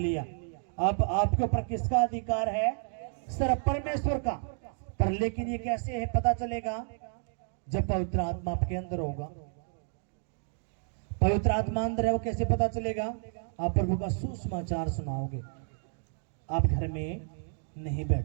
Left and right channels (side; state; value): left; silent; 57 dB below the other